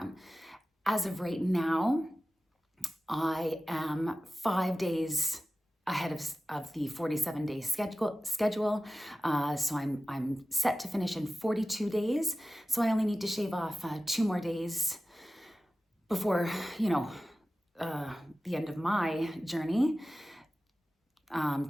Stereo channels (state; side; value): normal; both; correlation 0.94